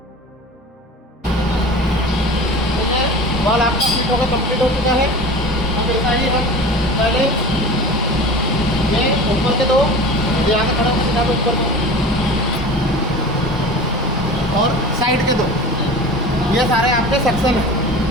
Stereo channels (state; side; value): normal; both; correlation 0.36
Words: बॉल आपका फिट होकर कंप्लीट हो चुका है। अब ऐसा ही हम पहले ये ऊपर के दो, यहाँ से खड़ा सीधा पे ऊपर दो और साइड के दो, ये सारे आपके सेक्शन हैं।